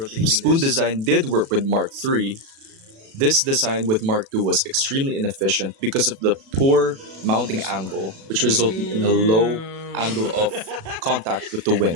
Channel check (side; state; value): left; late; 36 ms